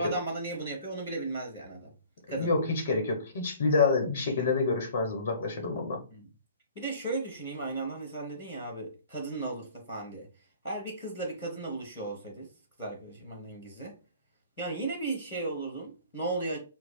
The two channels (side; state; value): both; inverted; correlation -0.50